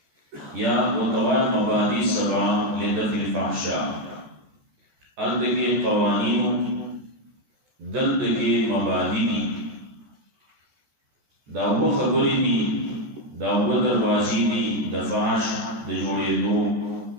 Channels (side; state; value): left; late; 14 ms